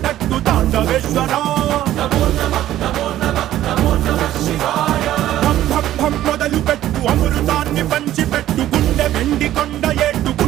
పెట్టు తాండవేశ్వర మొదలు పెట్టు అమృతాన్ని పంచి పెట్టు గుండె వెండి కొండ ఏట్టు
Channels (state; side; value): quieter; left; 13.2 dB